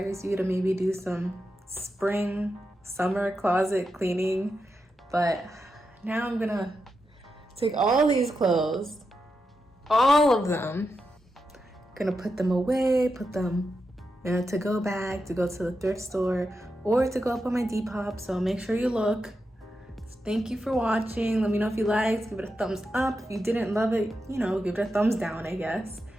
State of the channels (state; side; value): normal; both; correlation 0.87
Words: you to maybe do some spring, summer closet cleaning. But now I'm gonna take all these clothes, all of them, gonna put them away, put them in a to-go bag to go to the thrift store or to go up on my Depop. So make sure you look. Thank you for watching. Let me know if you liked, give it a thumbs up. If you didn't love it, you know, give it a thumbs down, I guess.